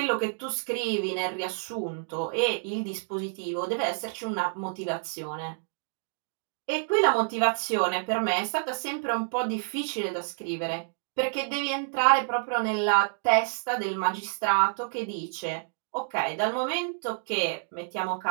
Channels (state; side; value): silent; left; digital silence